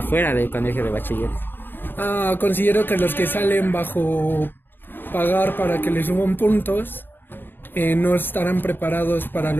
del colegio de bachiller? Considero que los que salen bajo pagar para que les suban puntos no estarán preparados para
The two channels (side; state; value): right; late; 0.097 ms